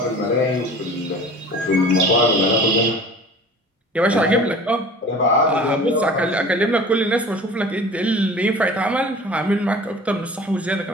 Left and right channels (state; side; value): normal; both; correlation 0.42